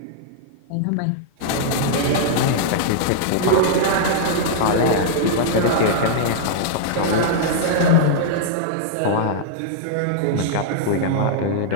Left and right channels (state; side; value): different; both; correlation -0.02